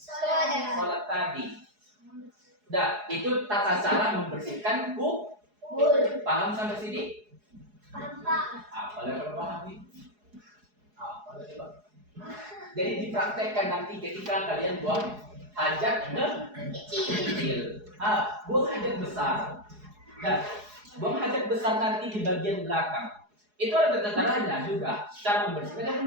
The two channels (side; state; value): left; late; 4.8 ms